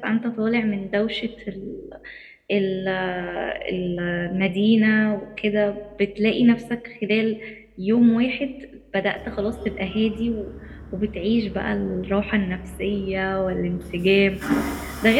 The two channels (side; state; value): both; identical; correlation 1.00